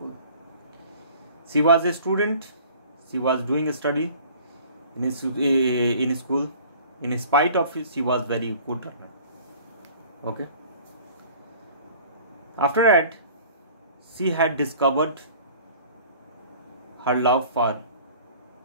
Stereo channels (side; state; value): both; inverted; correlation -0.49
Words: She was a student. She was doing a study in school. In spite of it, she was very good runner. Okay. After that, she had discovered her love for